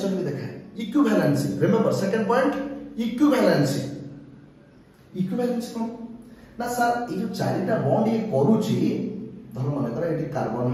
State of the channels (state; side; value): identical; both; correlation 1.00